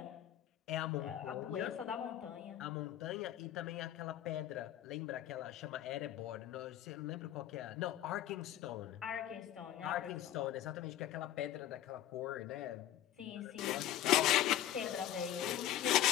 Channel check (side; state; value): right; quieter; 12.3 dB